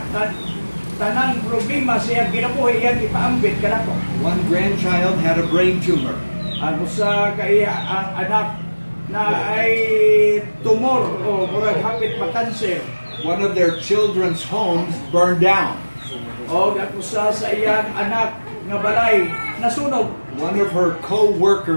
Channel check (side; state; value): both; inverted; correlation -1.00